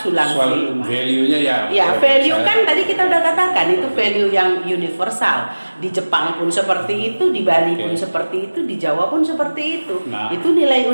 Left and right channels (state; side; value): inverted; both; correlation -1.00